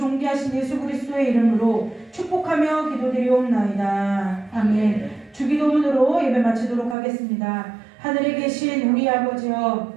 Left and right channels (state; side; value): drops out; left; at 7.0 s